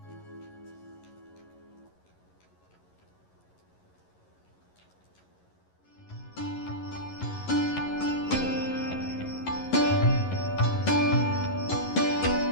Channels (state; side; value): late; right; 11 ms